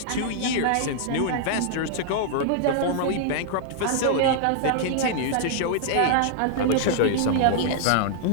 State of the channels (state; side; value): different; both; correlation -0.01